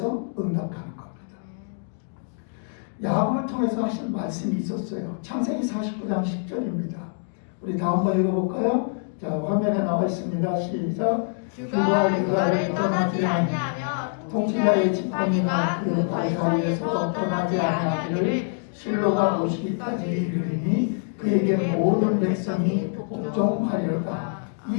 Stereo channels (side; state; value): right; silent; 62 dB below the other